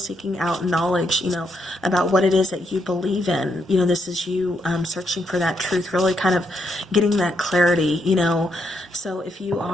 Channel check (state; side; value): normal; both; correlation 0.78